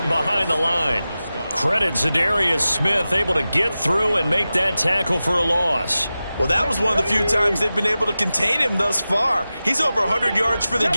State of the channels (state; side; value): inverted; both; correlation -0.95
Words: behind the line. Credit Zadarius Smith, able to get through and make that tackle for a loss. Well, that was one of the few times they've been able to contain him thus far. He's over 100 yards for the